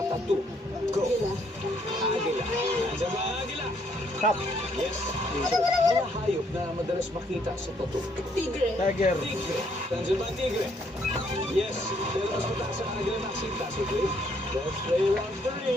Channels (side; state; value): both; normal; correlation 0.69